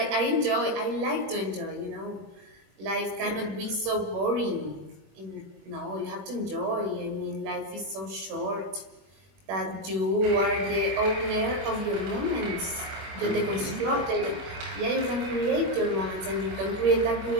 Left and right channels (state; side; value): late; left; 21 ms